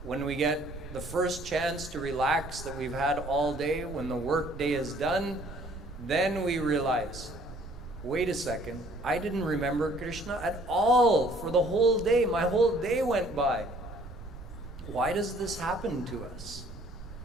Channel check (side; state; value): right; noise; rumble, 13 dB below the sound